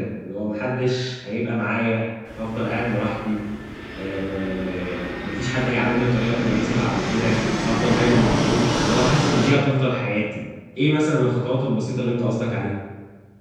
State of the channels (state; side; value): identical; both; correlation 1.00